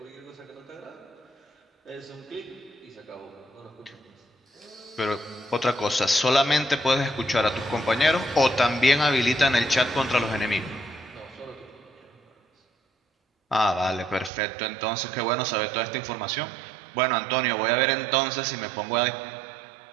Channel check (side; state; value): left; drops out; at 14.3 s